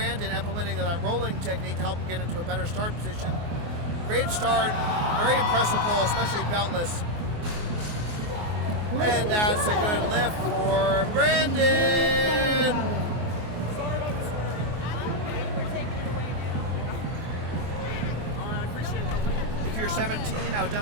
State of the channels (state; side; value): late; left; 24 ms